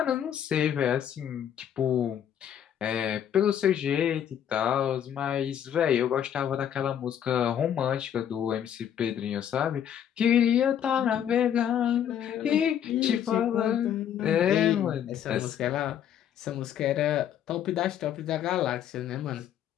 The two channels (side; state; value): right; quieter; 9.6 dB